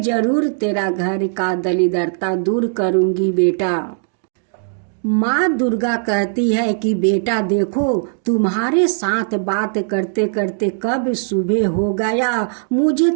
जरूर तेरा घर का दरिद्रता दूर करूंगी बेटा। माँ दुर्गा कहती है कि बेटा देखो, तुम्हारे साथ बात करते करते कब सुबह हो गया मुझे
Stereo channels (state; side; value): silent; left; digital silence